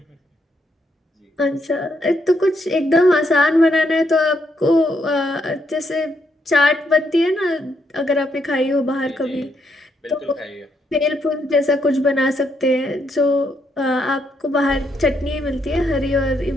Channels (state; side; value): normal; both; correlation 0.76